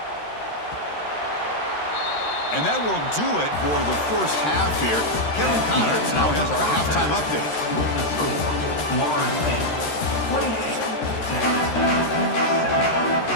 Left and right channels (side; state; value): right; late; 13 ms